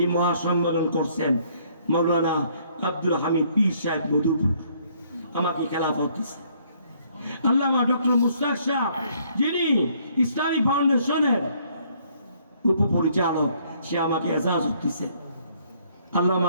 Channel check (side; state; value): both; inverted; correlation -0.64